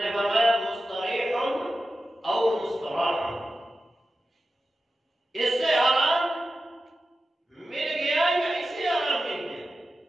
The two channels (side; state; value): both; normal; correlation 0.92